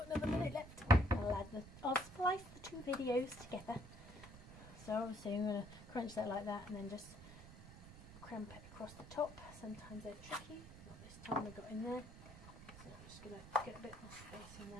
another minute left. I'll splice the two videos together. So obviously I'm going to crunch that like that and then just cramp it across the top. Sometimes they're tricky. Not this time I got in there. So I'm just going to get a bit more space in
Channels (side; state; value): right; noise; rumble, 15 dB below the sound